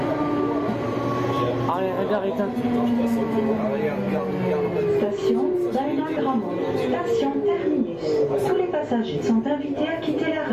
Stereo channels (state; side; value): noise; left; rumble, 29 dB below the sound